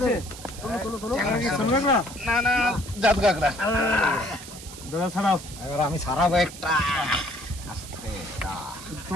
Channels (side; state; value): right; noise; hiss, 14 dB below the sound